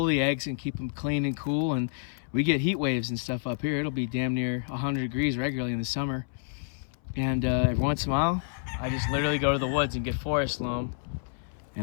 the eggs and keep them clean and cool, and we get heat waves and stuff up here. It'll be damn near 100 degrees regularly in the summer. And every once in a while, I just literally go to the woods and get forest loam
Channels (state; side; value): silent; right; 59 dB below the other